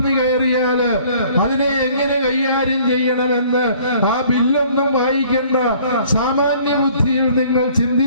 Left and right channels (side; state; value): both; inverted; correlation -0.56